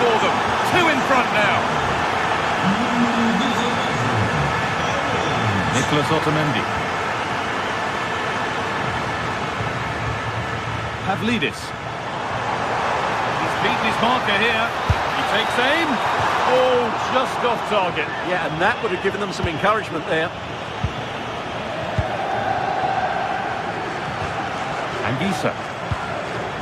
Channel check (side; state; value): both; identical; correlation 1.00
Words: them. 2 in front now. Nicholas Otamendi. Pavlidis. He's beaten his marker here. He takes aim. Oh, just off target. Yeah, and that would have given them some encouragement there. Anguissa.